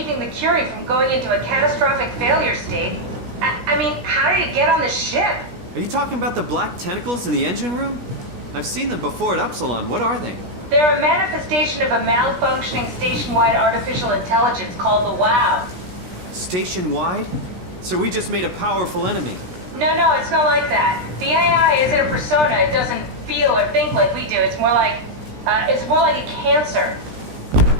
the Curie from going into a catastrophic failure state. I mean, how did it get on the ship? Are you talking about the black tentacles in the engine room? I've seen them before at Upsilon. What are they? They're a manifestation of a malfunctioning station-wide artificial intelligence called the WOW. Station-wide? So we just made a powerful enemy. No, it's not like that. The AI isn't a persona. It doesn't feel or think like we do. It's more like a cancer.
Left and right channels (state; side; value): late; left; 17 ms